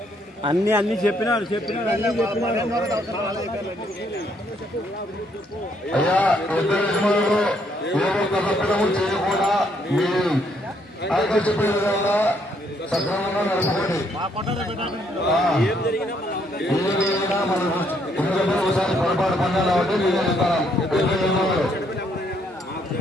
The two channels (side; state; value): both; normal; correlation 0.71